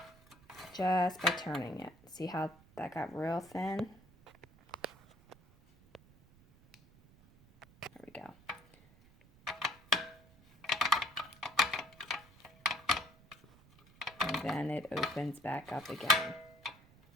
just by turning it. See how that got real thin? There we go. And then it opens back up again.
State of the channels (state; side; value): noise; right; rumble, 26 dB below the sound